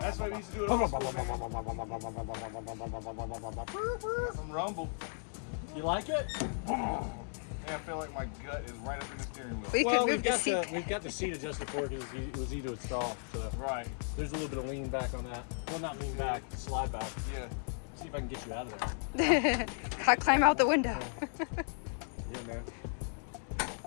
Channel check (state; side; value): silent; right; 54 dB below the other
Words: why we used to do it. Old school, man. Some rumble. You like it? Yeah, I feel like my gut is right up in the steering wheel. We Well, could we've move the got seat. we've got the seat adjusted for it because it was easy to install. So Right. there's a little bit of lean back on that. Well, not lean back, slide back. Yeah. See if I can get you out of there. I climb out the window. Yeah, man.